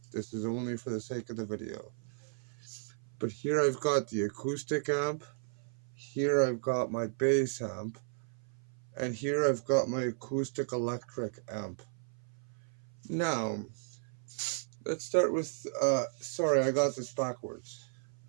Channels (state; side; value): silent; left; 55 dB below the other